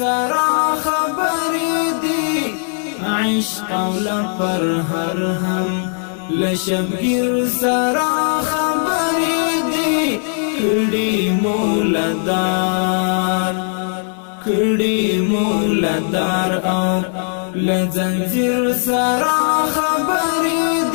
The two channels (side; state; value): right; silent; digital silence